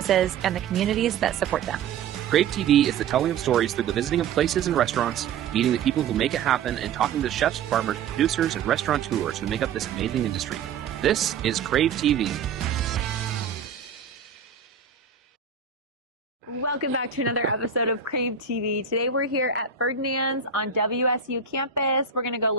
and the communities that support them. Crave TV is the telling of stories through the visiting of places and restaurants, meeting the people who make it happen, and talking to chefs, farmers, producers, and restaurateurs who make up this amazing industry. This is Crave TV. Welcome back to another episode of Crave TV. Today we're here at Ferdinand's on WSU campus. We're going to go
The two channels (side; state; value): left; quieter; 6.5 dB